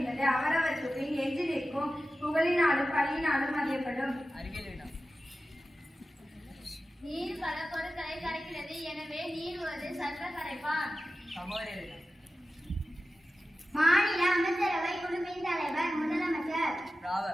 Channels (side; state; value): both; normal; correlation 0.94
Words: அவரவற்றுக்கு எஞ்சி நிற்கும் புகழினாலும் பழியினாலும் அறியப்படும். நீர் பல பொருட்களை கரைக்கிறது, எனவே நீர் ஒரு சர்வ கரைப்பான். மாநில அமைச்சரவை குழுவின் தலைவர் முதலமைச்சர்.